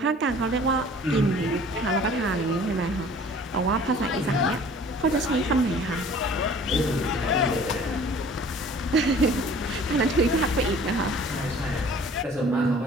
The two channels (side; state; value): both; normal; correlation 0.49